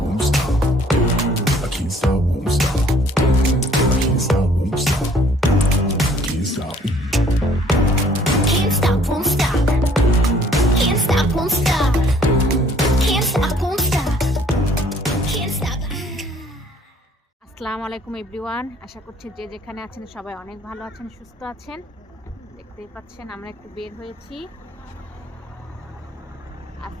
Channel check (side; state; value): both; normal; correlation 0.59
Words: won't stop. I can't stop, won't stop. I can't stop, won't stop. Can't stop. Can't stop, won't stop. Can't stop, won't stop. Can't stop, won't stop. Can't stop. আসসালামু আলাইকুম everyone, আশা করছি যে যেখানে আছেন সবাই অনেক ভালো আছেন, সুস্থ আছেন। দেখতেই পাচ্ছেন আমরা একটু বের হয়েছি।